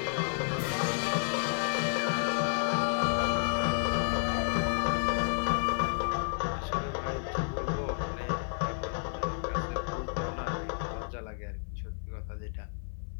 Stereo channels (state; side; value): silent; right; digital silence